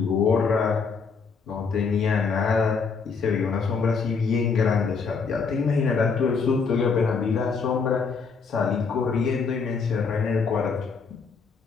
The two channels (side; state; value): right; quieter; 5.2 dB